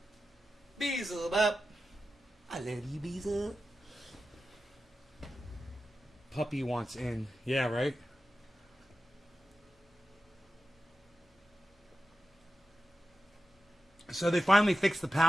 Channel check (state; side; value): normal; both; correlation 0.93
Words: Visa. Bop. I love you, Visa. Puppy wants in. Yeah, right? So they finally fixed the